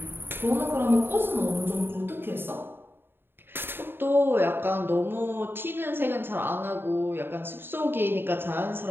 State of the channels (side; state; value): left; late; 0.10 ms